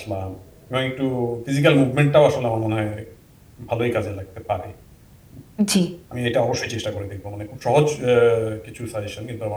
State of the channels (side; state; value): both; identical; correlation 1.00